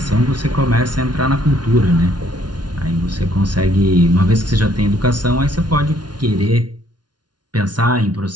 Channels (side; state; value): left; late; 0.70 ms